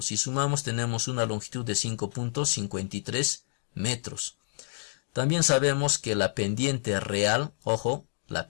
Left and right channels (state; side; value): silent; right; digital silence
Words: Si sumamos tenemos una longitud de 5.53 metros. También sabemos que la pendiente real, ojo, la